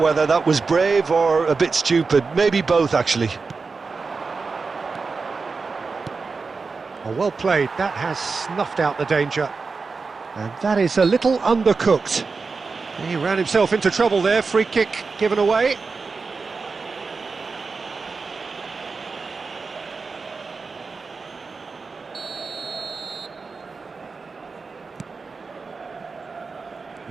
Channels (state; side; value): quieter; left; 4.5 dB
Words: that was brave or a bit stupid. Maybe both, actually. Oh, well played. That has snuffed out the danger. And that is a little undercooked. He ran himself into trouble there. Free kick given away.